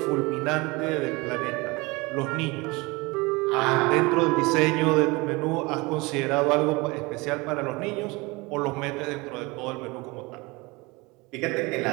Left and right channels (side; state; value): left; quieter; 24.6 dB